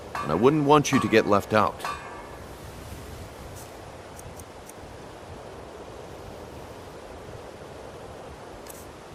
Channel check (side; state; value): both; identical; correlation 1.00